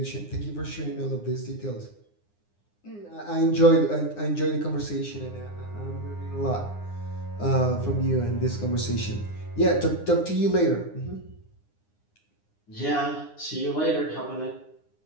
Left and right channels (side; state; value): right; late; 9.7 ms